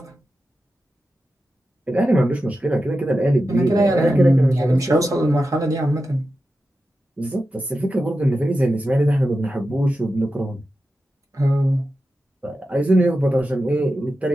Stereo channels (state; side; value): normal; both; correlation 0.91